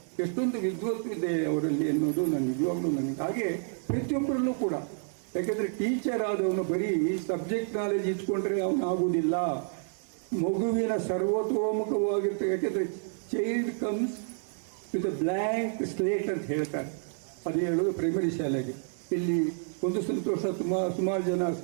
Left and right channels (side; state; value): left; silent; 58 dB below the other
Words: ಎಷ್ಟೊಂದು ವಿದ್ವತ್ತು ಇದೆ ಅವರಲ್ಲಿ ಅನ್ನೋದು ನಾನು ನಿಜವಾಗ್ಲೂ ನನಗೆ. ಹಾಗೆ ಪ್ರತಿಯೊಬ್ಬರಲ್ಲೂ ಕೂಡ, ಯಾಕೆಂದರೆ ಟೀಚರ್ ಆದವನು ಬರೀ ಸಬ್ಜೆಕ್ಟ್ ನಾಲೆಜ್ ಇಟ್ಕೊಂಡ್ರೆ ಅವನು ಆಗುವುದಿಲ್ಲ. ಮಗುವಿನ ಸರ್ವತೋಮುಖವಾಗಿರ್ತದೆ. ಯಾಕೆಂದರೆ child comes with a blank slate ಅಂತ ಹೇಳ್ತಾರೆ. ಅದು ಹೇಳೋದು ಪ್ರೈಮರಿ ಶಾಲೆಗೆ. ಇಲ್ಲಿ ಒಂದು ಸಂತೋಷ, ಸುಮಾರು ಜನ